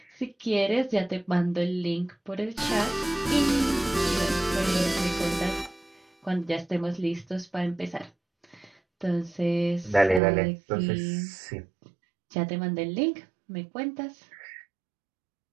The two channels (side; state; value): left; drops out; at 10.2 s